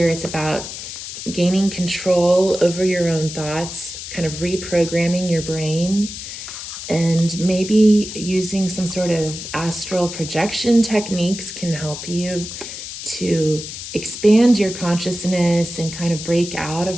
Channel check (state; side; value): noise; left; hiss, 9 dB below the sound